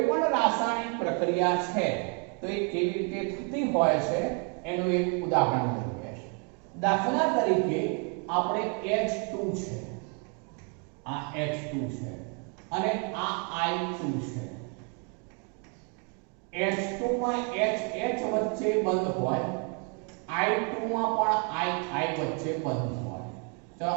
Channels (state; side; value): quieter; left; 37.5 dB